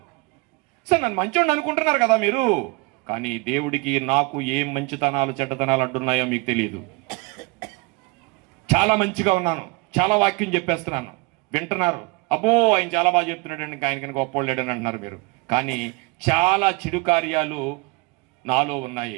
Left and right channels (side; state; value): left; quieter; 27.4 dB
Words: సార్ నన్ను మంచోడు అనుకుంటున్నారు కదా మీరు, కానీ దేవుడికి నాకు ఏం మంచితనాలు చెడ్డతనాలు అడ్డున్నాయో మీకు తెలియదు. చాలా మంచిగా ఉన్నాను, చాలా వాక్యం చెప్పేస్తున్నాను, వింటున్నారు. అబ్బో ఆయన చాలా బాగా చెప్తున్నాడు అండి, ఆయనకి గొప్పోళ్ళేడని అంటున్నారు మీరు. కానీ చాలా చెడు కార్యాలు నాలో ఉన్నాయి.